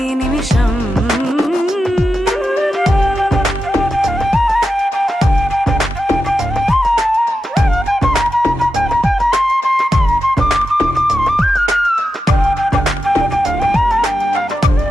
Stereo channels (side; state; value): both; normal; correlation 0.89